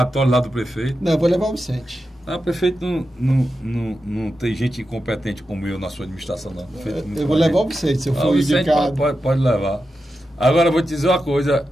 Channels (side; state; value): both; normal; correlation 0.90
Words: lá do prefeito. Não, eu vou levar o Vicente. O prefeito não tem gente incompetente como eu na sua administração, não. Eu vou levar o Vicente, se eu for indicado. Pode levar. Agora, eu vou te dizer uma coisa.